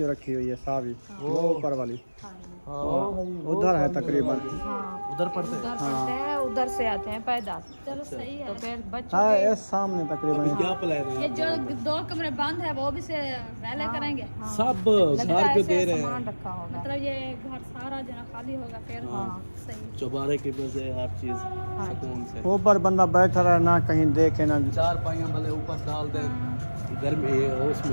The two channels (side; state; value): both; inverted; correlation -1.00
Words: रखी हुई है सावी, वो ऊपर वाली उधर है तकरीबन। हाँ उधर पढ़ते हैं। उधर पढ़ते हैं, उधर से आते हैं पैदल। चलो सही तो है। फिर बच्चों हाँ के ये सामने तकरीबन। क्या प्लान है? ये जो 2 कमरे बंद है वो भी से पहले करेंगे, सब लगता है घर पे ऐसे दे रहे सामान हैं, रखा होगा। मतलब ये घर सारा जो है खाली होगा फिर। सही। चौबारे की वजह हर चीज सुकून से। ऊपर बंदा बैठा रहे ना, कहीं देखे ना। चार पाइयां भले ऊपर डाल दें, गर्मी